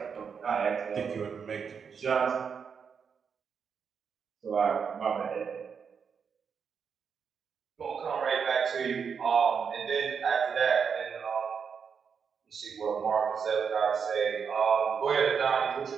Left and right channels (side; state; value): left; quieter; 6.4 dB